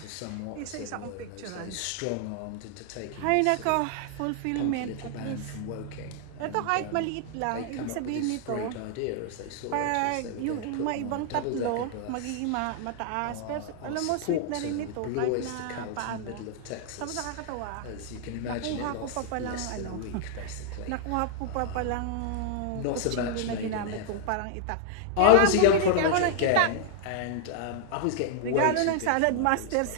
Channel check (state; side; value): different; both; correlation 0.00